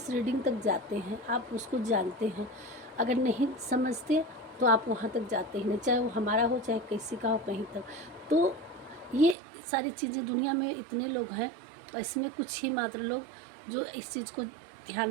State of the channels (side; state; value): left; drops out; at 9.3 s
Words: रीडिंग तक जाते हैं, आप उसको जानते हैं। अगर नहीं समझते तो आप वहाँ तक जाते ही नहीं, चाहे वो हमारा हो चाहे किसी का हो, कहीं तक। तो ये सारी चीज़ें दुनिया में इतने लोग हैं और इसमें कुछ ही मात्र लोग जो इस चीज़ को ध्यान